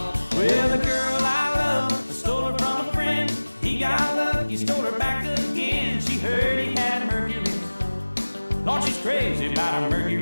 Well, the girl I love, I stole her from a friend. He got lucky, stole her back again. She heard he had a Mercury. Lord, she's crazy about a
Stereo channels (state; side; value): inverted; both; correlation -1.00